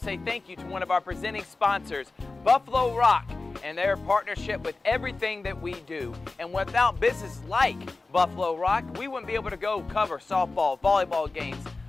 thank you to one of our presenting sponsors, Buffalo Rock, and their partnership with everything that we do. And without businesses like Buffalo Rock, we wouldn't be able to go cover softball, volleyball games,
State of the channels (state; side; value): quieter; right; 3.5 dB